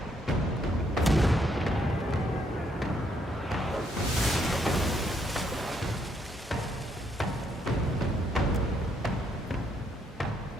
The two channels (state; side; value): normal; both; correlation 0.73